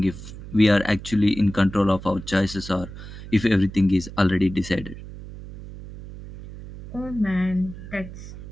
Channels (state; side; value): noise; right; hum, 13 dB below the sound